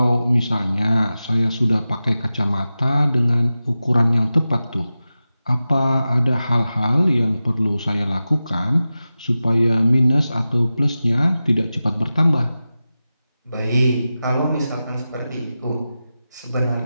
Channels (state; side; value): inverted; both; correlation -0.94